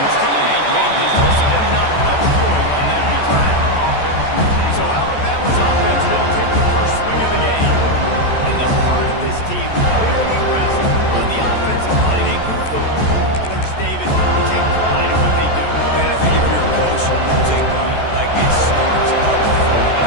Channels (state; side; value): late; right; 14 ms